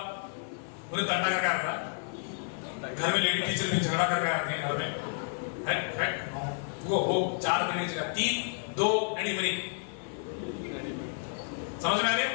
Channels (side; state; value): right; silent; 57 dB below the other